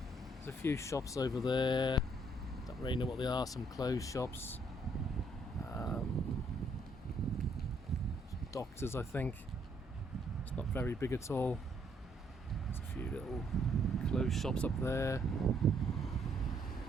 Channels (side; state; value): both; normal; correlation 0.69